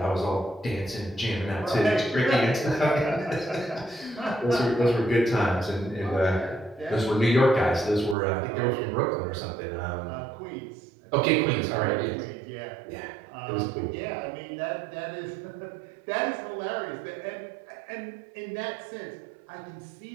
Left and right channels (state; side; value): drops out; left; at 8.2 s